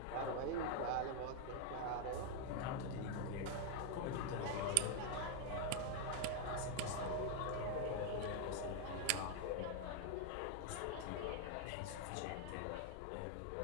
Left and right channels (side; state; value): both; different; correlation 0.00